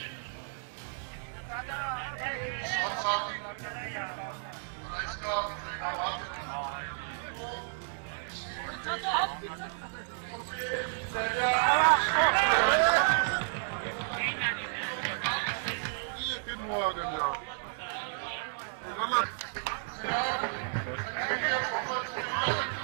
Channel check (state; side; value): silent; left; digital silence